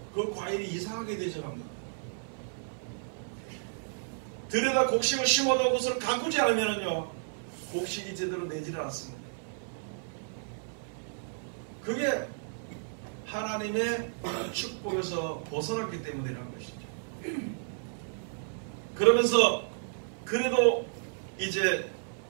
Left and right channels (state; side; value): silent; left; 56 dB below the other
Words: 그 과일이 이상하게 되져갑니다. 들여다 곡식을 심어도 그것을 가꾸지 않으면요 곡식이 제대로 내지를 않습니다. 그게 하나님의 축복에서 벗어났기 때문이라는 것이죠. 그러면서 그래도 이제